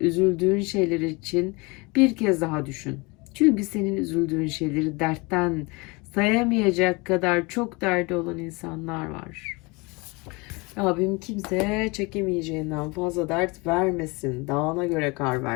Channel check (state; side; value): quieter; right; 26.8 dB